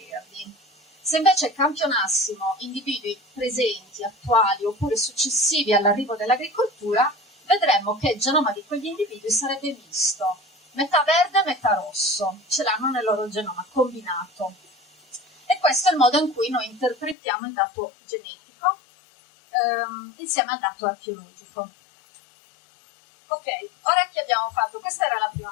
Se invece campionassimo individui presenti, attuali oppure successivi all'arrivo dell'agricoltura, vedremmo che il genoma di quegli individui sarebbe misto, metà verde e metà rosso, ce l'hanno nel loro genoma combinato. E questo è il modo in cui noi interpretiamo il dato genetico insieme al dato archeologico. Ok, ora che abbiamo fatto, questa era la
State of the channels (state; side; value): drops out; right; at 17.2 s